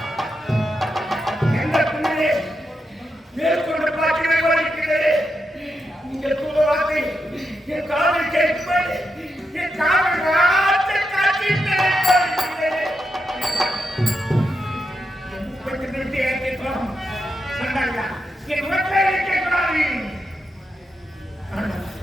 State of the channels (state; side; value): normal; both; correlation 0.85